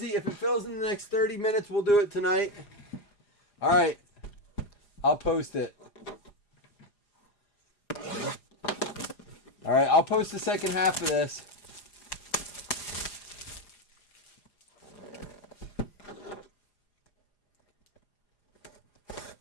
If it fills in the next 30 minutes, we'll do it tonight. All right. I'll post it. All right, I'll post the second half of this.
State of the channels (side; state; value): right; late; 4.9 ms